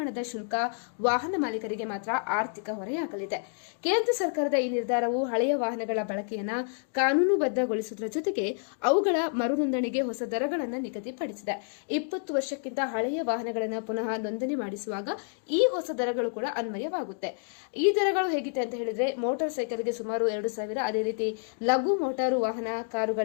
ಶುಲ್ಕ ವಾಹನ ಮಾಲೀಕರಿಗೆ ಮಾತ್ರ ಆರ್ಥಿಕ ಹೊರೆಯಾಗಲಿದೆ. ಕೇಂದ್ರ ಸರ್ಕಾರದ ಈ ನಿರ್ಧಾರವು ಹಳೆಯ ವಾಹನಗಳ ಬಳಕೆಯನ್ನು ಕಾನೂನುಬದ್ಧಗೊಳಿಸುವುದರ ಜೊತೆಗೆ ಅವುಗಳ ಮರು ನೋಂದಣಿಗೆ ಹೊಸ ದರಗಳನ್ನು ನಿಗದಿಪಡಿಸಿದೆ. 20 ವರ್ಷಕ್ಕಿಂತ ಹಳೆಯ ವಾಹನಗಳನ್ನು ಪುನಃ ನೋಂದಣಿ ಮಾಡಿಸುವಾಗ ಈ ಹೊಸ ದರಗಳು ಕೂಡ ಅನ್ವಯವಾಗುತ್ತೆ. ಈ ದರಗಳು ಹೇಗಿದೆ ಅಂತ ಹೇಳಿದ್ರೆ, ಮೋಟಾರ್ ಸೈಕಲ್ಗೆ ಸುಮಾರು 2,000, ಅದೇ ರೀತಿ ಲಘು ಮೋಟಾರು ವಾಹನ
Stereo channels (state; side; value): silent; right; 59 dB below the other